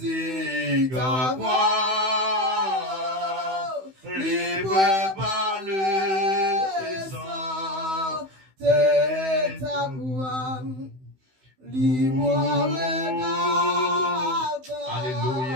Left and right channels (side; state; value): left; late; 16 ms